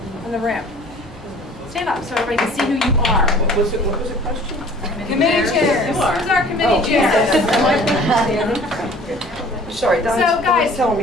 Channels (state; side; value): normal; both; correlation 0.49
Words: in the room? Stand up so everybody can see who you are. What was the question? Committee chairs. Who's our committee chairs? Sorry, so guys, telling